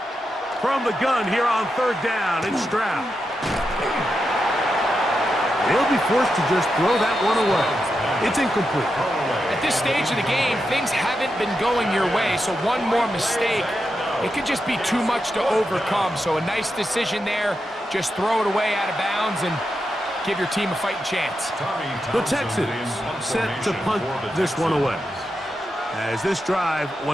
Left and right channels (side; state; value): both; normal; correlation 0.87